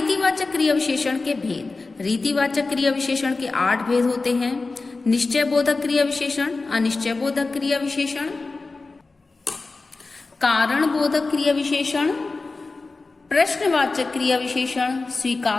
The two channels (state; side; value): quieter; right; 3.7 dB